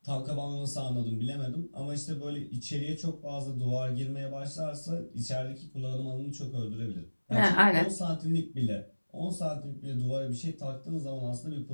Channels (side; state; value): both; inverted; correlation -1.00